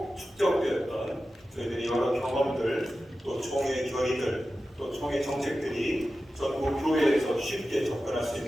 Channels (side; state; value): both; normal; correlation 0.93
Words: 저희들이 여러 경험들 또 총회 결의들 또 총회 정책들이 전국 교회에서 쉽게 접근할 수